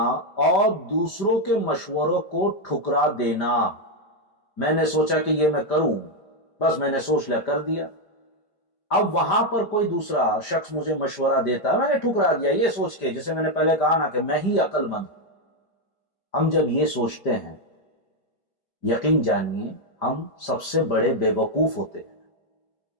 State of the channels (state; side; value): late; right; 5.0 ms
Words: اور دوسروں کے مشوروں کو ٹھکرا دینا۔ میں نے سوچا کہ یہ میں کروں، بس میں نے سوچ لیا، کر دیا۔ اب وہاں پر کوئی دوسرا شخص مجھے مشورہ دیتا ہے، میں نے ٹھکرا دیا یہ سوچ کے، جیسے میں نے پہلے کہا نا کہ میں ہی عقل مند ہوں۔ ہم جب یہ سوچتے ہیں، یقین جانیے ہم سب سے بڑے بے وقوف ہوتے ہیں۔